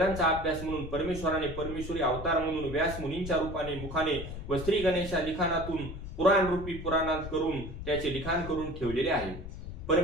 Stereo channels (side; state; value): left; noise; rumble, 9 dB below the sound